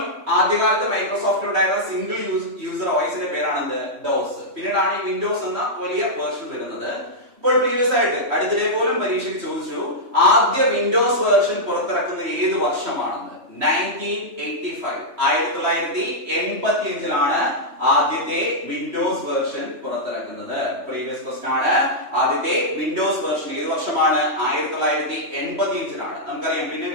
ആദ്യകാലത്ത് മൈക്രോസോഫ്റ്റ് ഉണ്ടായിരുന്ന സിംഗിൾ യൂസർ OSന്റെ പേരാണ് ഡോസ്. പിന്നീടാണ് ഈ വിൻഡോസ് എന്ന വലിയ വേർഷൻ വരുന്നത്. ഇപ്പോൾ പ്രീവിയസ് ആയിട്ട് അടുത്തിടെ പോലും പരീക്ഷയ്ക്ക് ചോദിച്ചു, ആദ്യ വിൻഡോസ് വേർഷൻ പുറത്തിറക്കുന്നത് ഏത് വർഷമാണെന്ന്? 1985. 1985 ആദ്യത്തെ വിൻഡോസ് വേർഷൻ പുറത്തിറക്കുന്നത്. പ്രീവിയസ് ക്വസ്റ്റൻ ആണ്. ആദ്യത്തെ വിൻഡോസ് വേർഷൻ ഏത് വർഷമാണ്? 1985. നമുക്കറിയാം, പിന്നെ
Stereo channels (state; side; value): late; left; 3.1 ms